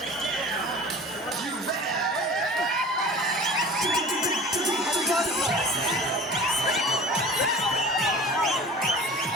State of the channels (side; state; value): both; normal; correlation 0.40